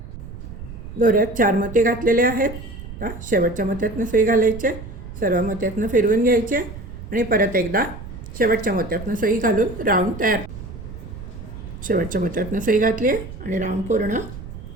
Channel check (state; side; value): noise; right; rumble, 12 dB below the sound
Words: दोऱ्यात 4 मोती घातलेले आहेत। आता शेवटच्या मोत्यातनं सुई घालायचे, सर्व मोत्यातनं फिरवून घ्यायचे आणि परत एकदा शेवटच्या मोत्यातनं सुई घालून राऊंड तयार। शेवटच्या मोत्यातनं सुई घातली आहे आणि राऊंड पूर्ण